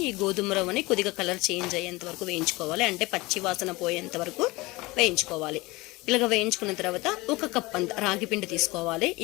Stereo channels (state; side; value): quieter; right; 22.1 dB